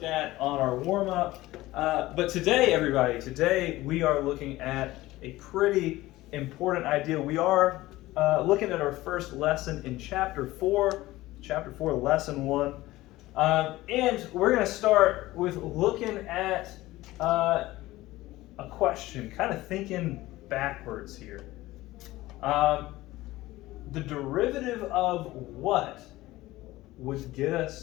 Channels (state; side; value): quieter; right; 17.7 dB